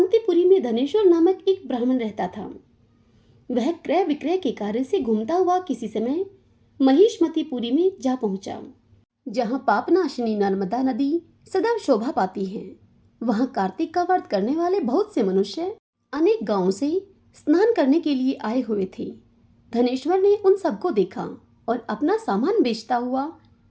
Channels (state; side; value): identical; both; correlation 1.00